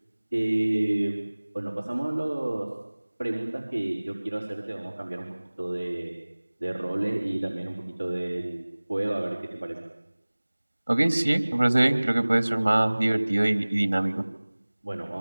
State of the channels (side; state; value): both; inverted; correlation -1.00